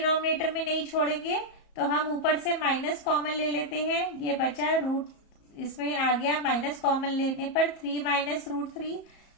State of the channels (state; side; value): late; right; 34 ms